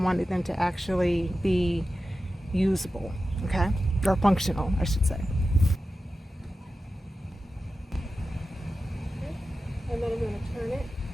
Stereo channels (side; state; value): both; normal; correlation 0.93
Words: them to actually be usable, okay? Or functional, I should say. Okay. And then I'm going to turn it.